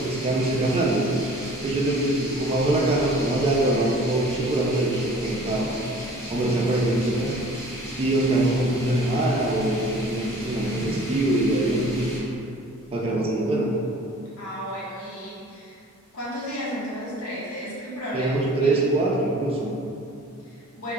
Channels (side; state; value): both; normal; correlation 0.48